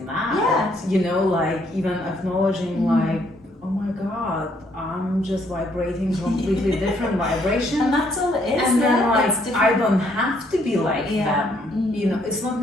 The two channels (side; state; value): both; normal; correlation 0.69